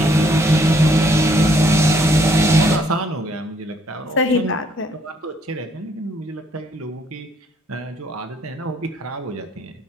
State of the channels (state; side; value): normal; both; correlation 0.68